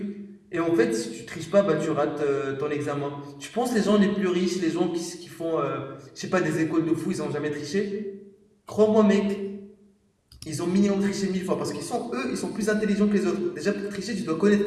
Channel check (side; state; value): both; identical; correlation 1.00